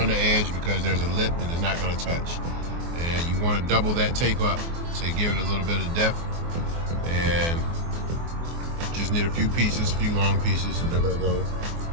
the edge because there's a lip and it's not gonna touch. And you want to double that tape up to give it a little bit of depth. And just need a few pieces, a few long pieces, and they're gonna go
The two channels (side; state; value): left; late; 24 ms